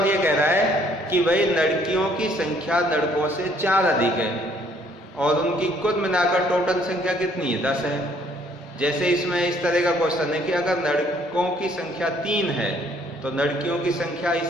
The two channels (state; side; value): normal; both; correlation 0.63